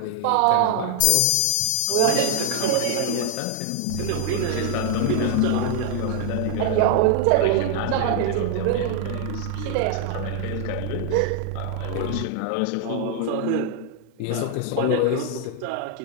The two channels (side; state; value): both; different; correlation 0.00